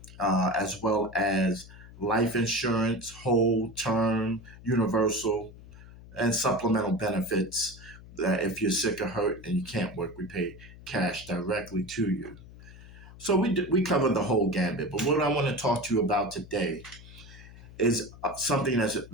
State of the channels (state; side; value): noise; left; hum, 18 dB below the sound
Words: as well as life insurance, whole term, universal, and supplemental benefits. That if you're sick or hurt and you can't work, we pay cash directly to you. So we cover the whole gambit. But what I want to talk to you about today is something that's